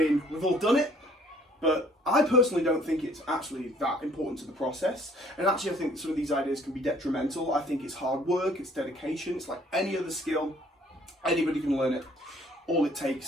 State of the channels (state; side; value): normal; both; correlation 0.59